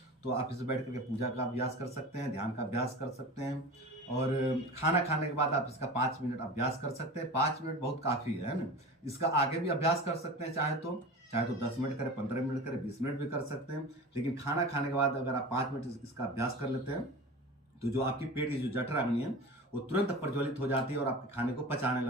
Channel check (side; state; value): both; normal; correlation 0.33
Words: तो आप इसमें बैठ करके पूजा का अभ्यास कर सकते हैं, ध्यान का अभ्यास कर सकते हैं। और खाना खाने के बाद आप इसका 5 मिनट अभ्यास कर सकते हैं। 5 मिनट बहुत काफ़ी है ना। इसका आगे भी अभ्यास कर सकते हैं, चाहे तो 10 मिनट करें, 15 मिनट करें, 20 मिनट भी कर सकते हैं। लेकिन खाना खाने के बाद अगर आप 5 मिनट इसका अभ्यास कर लेते हैं तो जो आपकी पेट की जो जठराग्नि है वो तुरंत प्रज्वलित हो जाती है और आपके खाने को पचाने